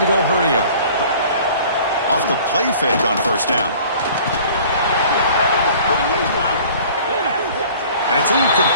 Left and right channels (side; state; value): both; inverted; correlation -0.48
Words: to go hurry up. Off the play fake on first down. And it's